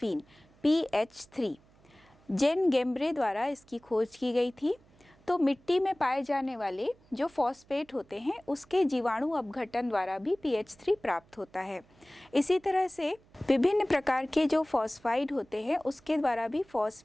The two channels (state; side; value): noise; right; hum, 30 dB below the sound